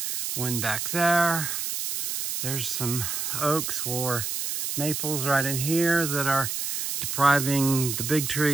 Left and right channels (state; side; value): noise; right; hiss, 3 dB below the sound